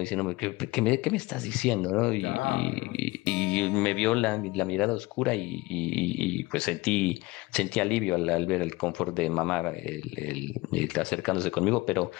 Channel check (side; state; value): right; quieter; 21.7 dB